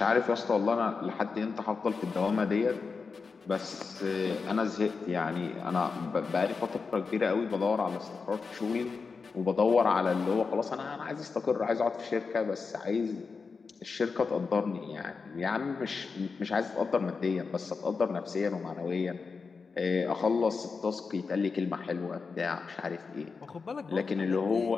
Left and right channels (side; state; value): right; quieter; 4.9 dB